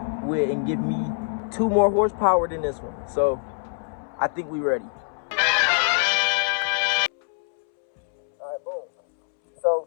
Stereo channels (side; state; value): right; silent; 62 dB below the other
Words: with and give me 2 more horsepower than this one. So I think we ready. Alright, boom.